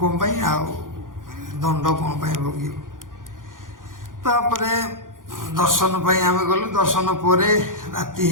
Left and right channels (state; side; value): late; left; 0.89 ms